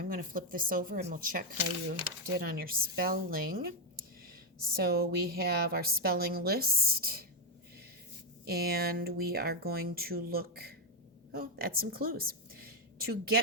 going to flip this over and we'll check how you did on your spelling. So we have our spelling list, and we are going to look at some clues. To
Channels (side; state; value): both; normal; correlation 0.04